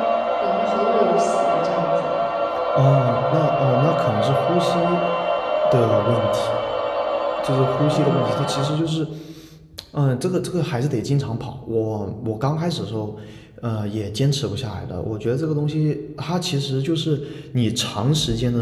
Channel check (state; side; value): identical; both; correlation 1.00